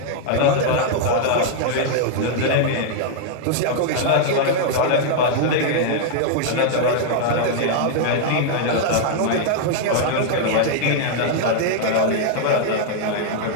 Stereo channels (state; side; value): different; both; correlation -0.01